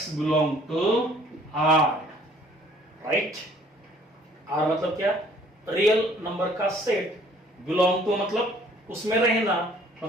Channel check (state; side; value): normal; both; correlation 0.58